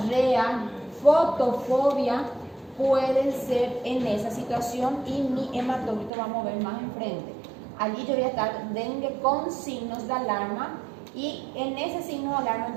fotofobia, pueden ser en esa situación y mi hematocrito va a mover más enfrente. Allí yo voy a estar dengue con signos de alarma y en ese signo de alarma el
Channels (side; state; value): left; drops out; at 6.1 s